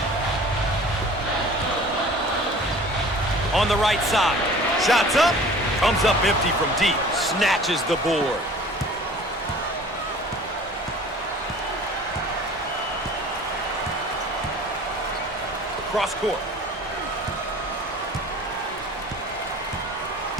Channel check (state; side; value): normal; both; correlation 0.45